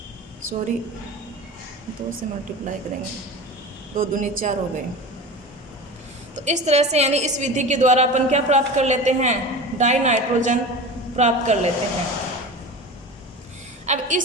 से मल्टीप्लाई करेंगे, 2 दूनी 4 हो गए। तो इस तरह से यानी इस विधि के द्वारा अपन क्या प्राप्त कर लेते हैं, डाई नाइट्रोजन प्राप्त कर लेते हैं। अब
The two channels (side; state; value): both; normal; correlation 0.32